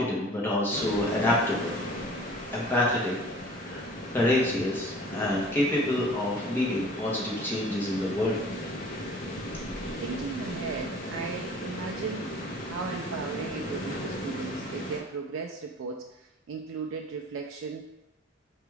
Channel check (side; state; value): both; normal; correlation 0.47